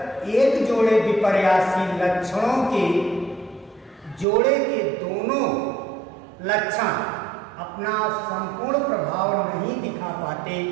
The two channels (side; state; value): left; drops out; at 4.2 s